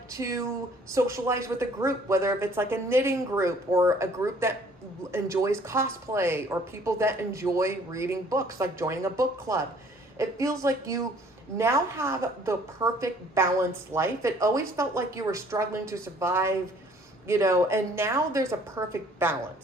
to socialize with a group, whether if it's like a knitting group or a group that enjoys cosplay, or people that enjoy reading books, like joining a book club. It feels like you now have the perfect balanced life. It always felt like you were struggling to survive, you know, and now there's a perfect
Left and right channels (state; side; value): normal; both; correlation 0.58